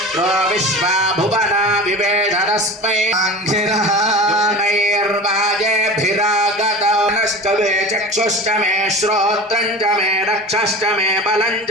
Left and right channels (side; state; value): both; normal; correlation 0.33